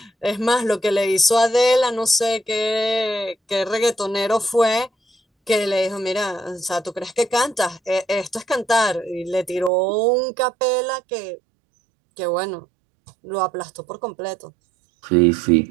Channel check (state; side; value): drops out; left; at 9.7 s